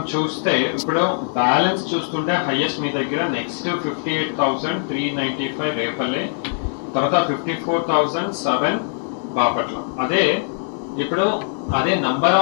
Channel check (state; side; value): silent; right; digital silence